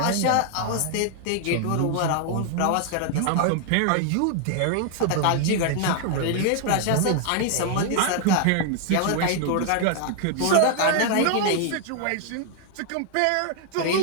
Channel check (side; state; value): both; different; correlation 0.00